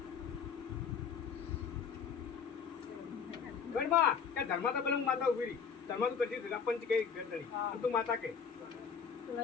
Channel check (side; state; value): right; quieter; 6.4 dB